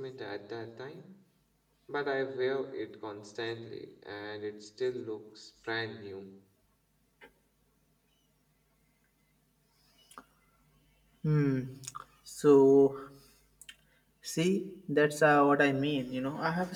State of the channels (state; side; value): identical; both; correlation 1.00